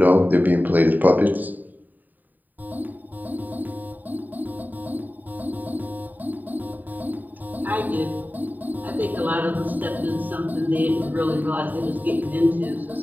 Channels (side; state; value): left; late; 0.086 ms